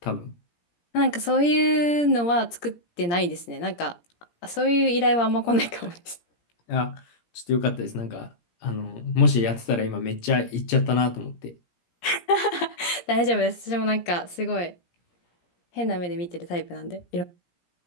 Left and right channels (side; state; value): right; late; 17 ms